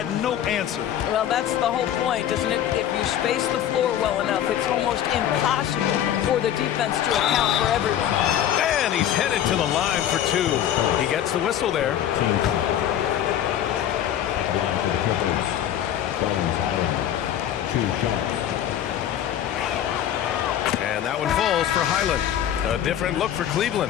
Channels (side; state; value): right; quieter; 10.8 dB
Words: no answer. Well, that's the whole point, isn't it? If you space the floor well enough, it's almost impossible for the defense to account for everyone. And he's headed to the line for 2. He gets the whistle there. Line for the Clippers. 2 shots. And that one falls for Highland. A different look for